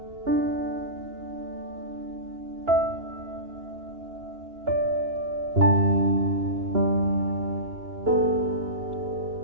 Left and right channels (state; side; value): late; left; 2.9 ms